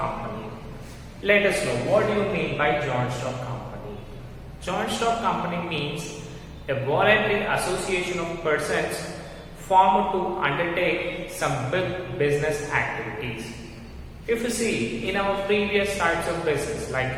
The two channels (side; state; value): both; identical; correlation 1.00